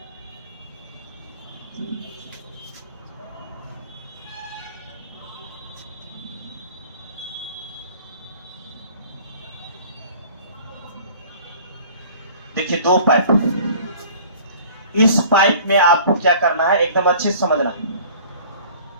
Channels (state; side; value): inverted; both; correlation -0.48